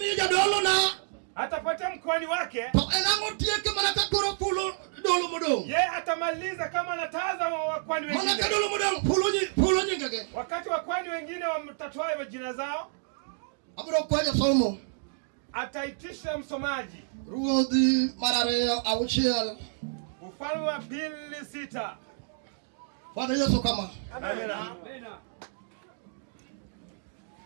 dolo na atapatia mkwani wake. To enango tieke manaka koro pulo dolo modong. Yeye atamaliza kama anataza wakwani wengine. Manaka dolo modong pulo nyingege. Wakati wakwani wengine wamtatoa majina zao. Abro kwaje somo. Ataitisha msomaji. Ruodhi marareo auchiel. Ufalme wa pili 6. Bwana Yesu kama. Amen.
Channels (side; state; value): left; silent; digital silence